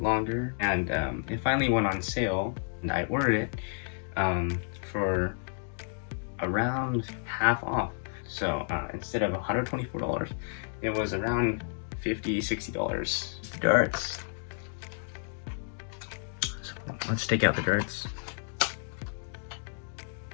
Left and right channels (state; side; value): silent; right; digital silence